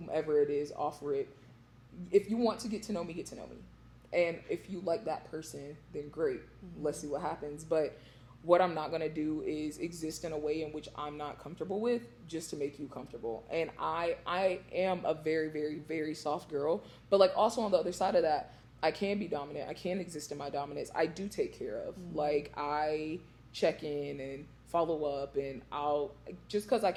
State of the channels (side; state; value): both; identical; correlation 1.00